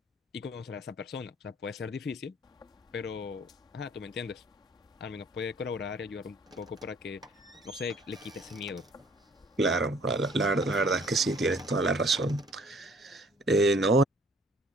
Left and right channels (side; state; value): both; normal; correlation 0.58